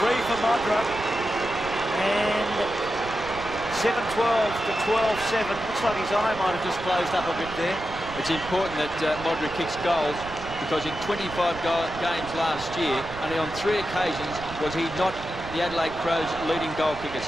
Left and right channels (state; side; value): noise; right; rumble, 14 dB below the sound